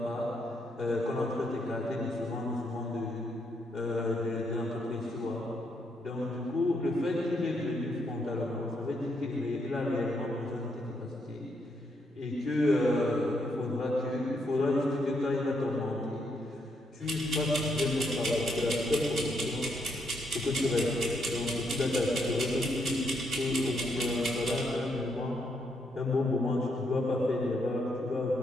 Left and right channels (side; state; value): both; normal; correlation 0.76